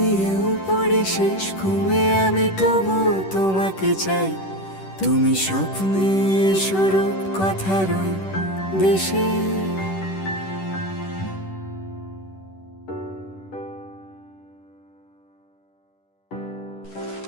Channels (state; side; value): late; right; 10 ms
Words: পড়ি শেষ ঘুমে আমি তবু তোমাকে চাই, তুমি স্বপ্নে স্বরূপ কথার ওই দেশে।